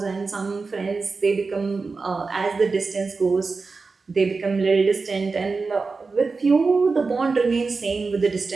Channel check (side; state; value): left; quieter; 4.3 dB